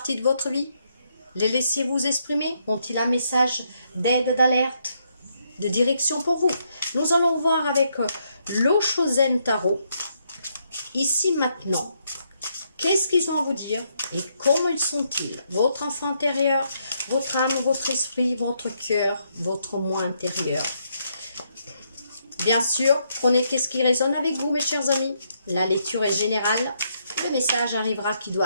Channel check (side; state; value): both; inverted; correlation -0.76